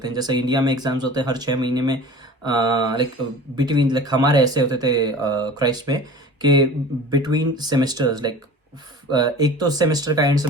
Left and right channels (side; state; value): both; normal; correlation 0.40